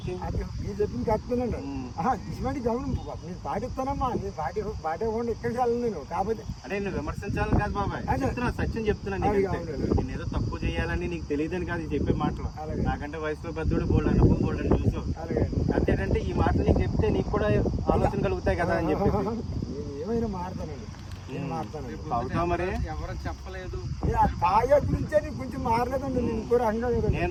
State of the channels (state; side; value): identical; both; correlation 1.00